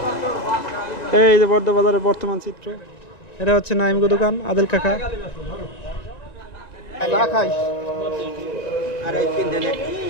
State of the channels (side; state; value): right; late; 1.9 ms